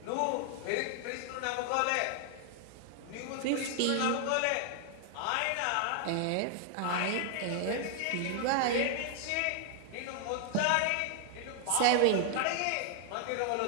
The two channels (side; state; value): both; different; correlation 0.00